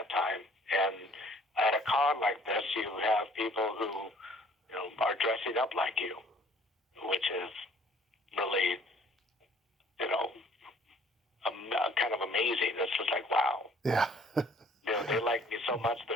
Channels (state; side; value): normal; both; correlation 0.56